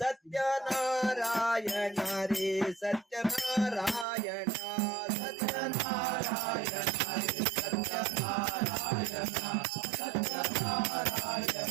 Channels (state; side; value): drops out; left; at 4.0 s